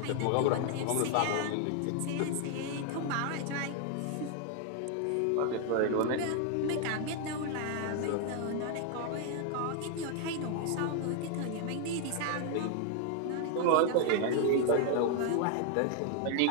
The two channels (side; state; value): both; different; correlation 0.00